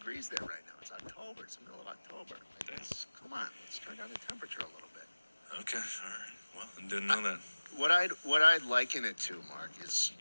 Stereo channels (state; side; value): inverted; both; correlation -1.00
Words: there right now. It's October. It's the middle of October. Like, come on, let's turn down the temperature a little bit. Okay, all right. Well, I didn't know that. What I'd liken it to, Mark, is